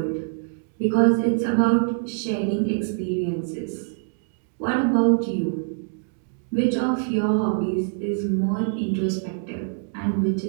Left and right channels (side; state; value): left; silent; digital silence